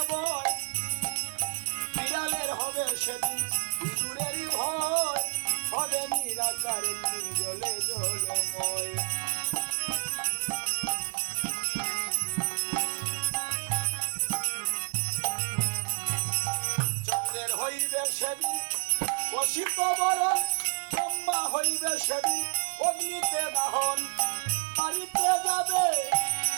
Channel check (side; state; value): left; silent; digital silence